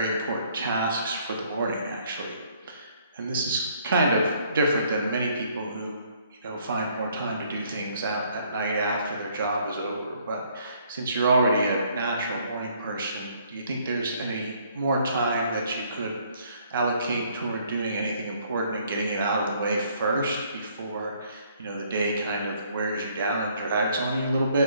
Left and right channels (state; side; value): inverted; both; correlation -0.64